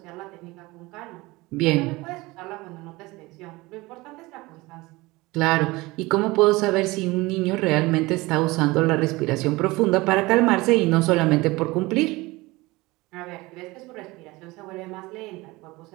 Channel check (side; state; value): left; quieter; 21.6 dB